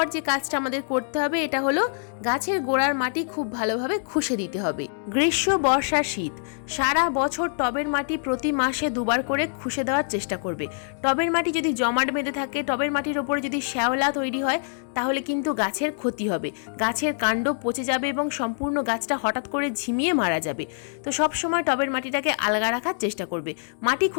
যে কাজটা আমাদের করতে হবে এটা হলো গাছের গোড়ার মাটি খুব ভালোভাবে খুশে দিতে হবে। গ্রীষ্ম, বর্ষা, শীত সারা বছর টবের মাটি প্রতি মাসে 2 বার করে খুশে দেওয়ার চেষ্টা করবে। টবের মাটি যদি জমাট বেঁধে থাকে, টবের মাটির ওপরে যদি শ্যাওলা তৈরি হয়, তাহলে কিন্তু গাছের ক্ষতি হবে। গাছের কাণ্ড পচে যাবে এবং সম্পূর্ণ গাছটা হঠাৎ করে ঝিমিয়ে মারা যাবে। তো সব সময় টবের মাটিটাকে আলগা রাখার চেষ্টা করবে। মাটি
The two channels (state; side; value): silent; right; 62 dB below the other